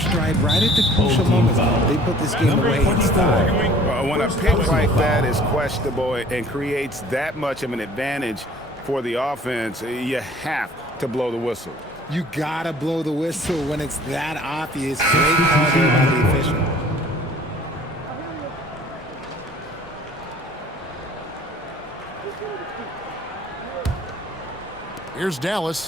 right at the crucial moments. They put this game away in style. When a pick like that is questionable and creates that much of an advantage for the offense, you have to blow the whistle. You gotta blow the whistle when it's that obvious. Great call there by the official. Here's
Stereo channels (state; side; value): normal; both; correlation 0.52